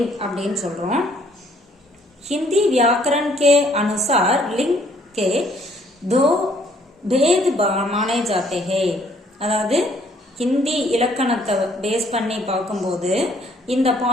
அப்படின்னு சொல்றோம். हिंदी व्याकरण के अनुसार लिंग के दो भेद माने जाते हैं. அதாவது ஹிந்தி இலக்கணத்தை பேஸ் பண்ணி பார்க்கும்போது இந்த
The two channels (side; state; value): both; normal; correlation 0.63